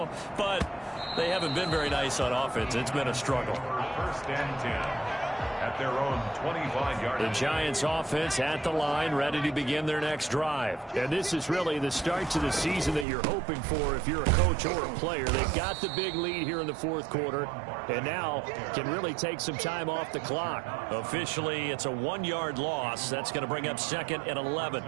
but they haven't been very nice on offense. It's been a struggle. 1st and 10. At their own 25-yard line. The Giants offense at the line, ready to begin their next drive. And this is really the start to the season that you're hoping for if you're a coach or a player. They've got the big lead here in the 4th quarter, and now can really take some time off the clock. Officially, it's a 1-yard loss. That's going to bring up 2nd and 11.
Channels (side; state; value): left; drops out; at 13.1 s